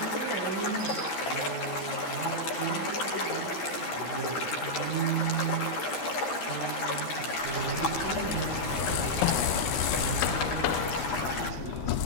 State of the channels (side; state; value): right; late; 13 ms